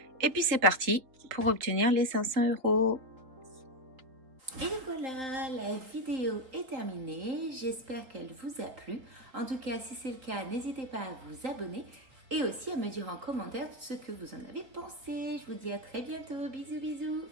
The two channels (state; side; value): late; left; 3.8 ms